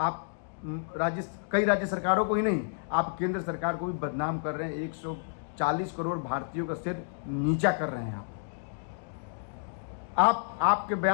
कई राज्य सरकारों को ही नहीं, आप केंद्र सरकार को भी बदनाम कर रहे हैं। 140 करोड़ भारतीयों का सिर नीचा कर रहे हैं आपके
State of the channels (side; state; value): right; silent; digital silence